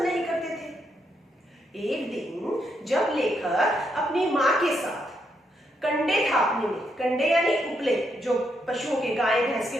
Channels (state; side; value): normal; both; correlation 0.78